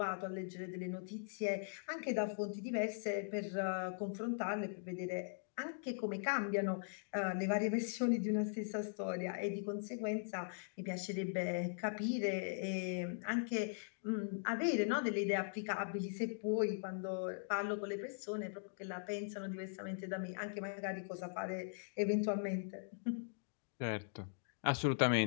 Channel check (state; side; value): silent; right; digital silence